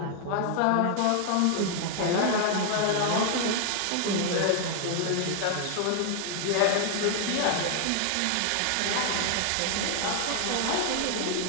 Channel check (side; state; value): both; different; correlation 0.00